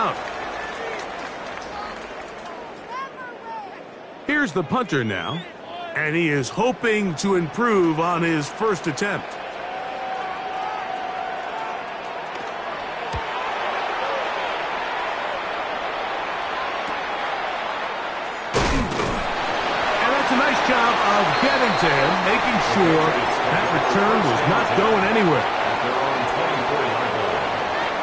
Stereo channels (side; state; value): both; identical; correlation 1.00